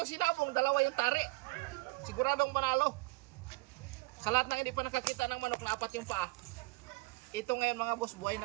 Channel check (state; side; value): quieter; left; 24.6 dB